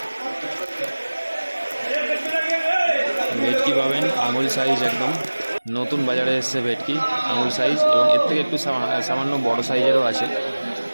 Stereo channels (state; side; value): inverted; both; correlation -1.00